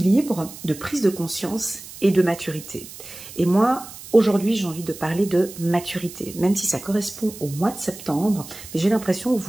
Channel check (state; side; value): noise; right; hiss, 15 dB below the sound